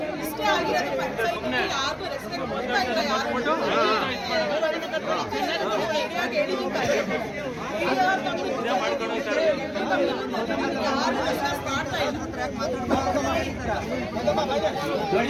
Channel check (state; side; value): identical; both; correlation 1.00